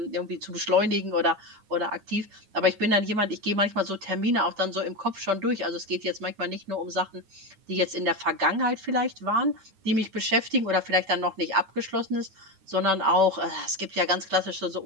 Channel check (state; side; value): late; left; 9.6 ms